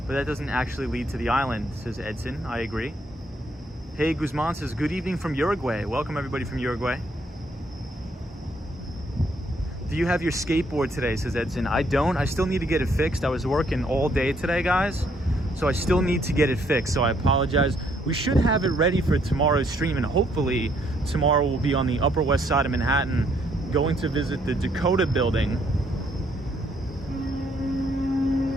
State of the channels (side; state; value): both; normal; correlation 0.69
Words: but that doesn't actually lead to the island, says Edson. I agree. Hey, Guzman says, good evening from Uruguay. Welcome, everybody from Uruguay. Do you have your skateboard today, says Edson. I don't. I still need to get it fixed. I was working all day today, guys. So I still need to get it fixed. So I apologize. We should have it ready for tomorrow's stream. And hopefully tomorrow we'll be on the Upper West Side of Manhattan going to visit the Dakota building.